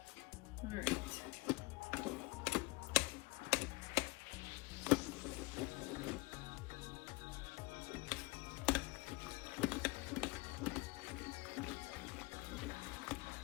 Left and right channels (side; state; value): right; quieter; 22.4 dB